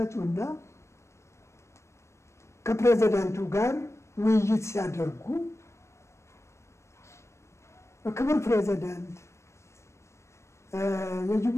ከፕሬዝዳንቱ ጋር ውይይት ሲያደርጉ ክቡር ፕሬዝዳንት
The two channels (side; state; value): right; late; 0.13 ms